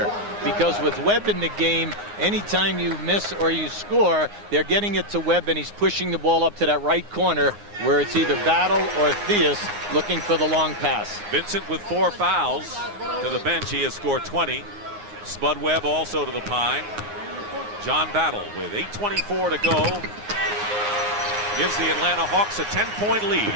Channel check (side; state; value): left; late; 9.7 ms